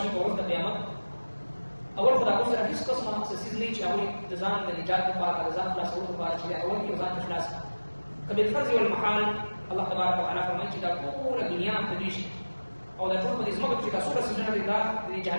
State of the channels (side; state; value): both; inverted; correlation -1.00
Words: ko waqt qiyamah awal khada ko sara his qisma se sizli chawi dazan da nijat ka para dazan la sawt para chi awal ki dazan ikhlas kabil farz wal mahal Allah tabarak wa taala farmai chi da pura dunia tadish aw da tur badis magat chi da sura sujana da di